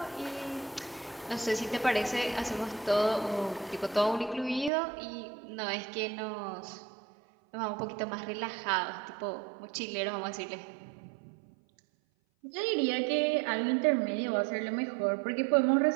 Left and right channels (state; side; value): drops out; left; at 4.7 s